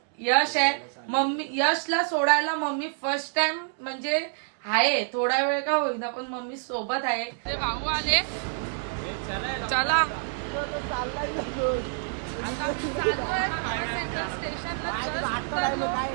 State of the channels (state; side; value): silent; left; 60 dB below the other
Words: यश आहे. मम्मी यशला सोडायला मम्मी फर्स्ट टाइम म्हणजे आहे, थोडा वेळ का होईना पण मम्मी सोबत आहे. ते भाऊ आले, चला आता मी चाललोय मुंबई सेंट्रल स्टेशनला. जस्ट उतरलो